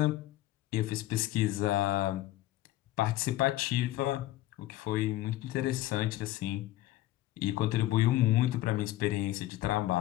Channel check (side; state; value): right; quieter; 15.3 dB